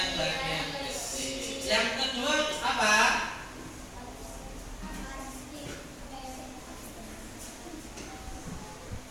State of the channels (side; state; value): both; identical; correlation 1.00